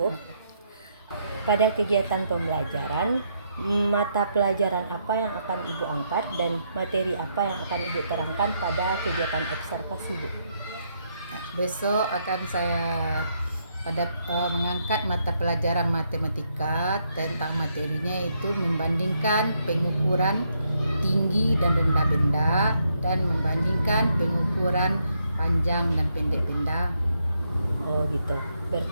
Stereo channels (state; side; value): inverted; both; correlation -0.76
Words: Pada kegiatan pembelajaran, mata pelajaran apa yang akan Ibu angkat dan materi apa yang akan Ibu terangkan pada kegiatan observasi Bu? Besok akan saya mengangkat mata pelajaran matematika. Tentang materinya itu membandingkan pengukuran tinggi dan rendah benda dan membandingkan pengukuran panjang dan pendek benda. Oh gitu.